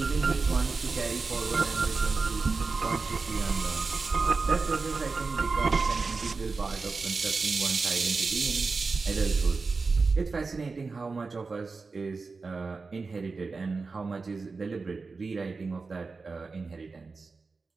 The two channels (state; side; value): quieter; left; 4.2 dB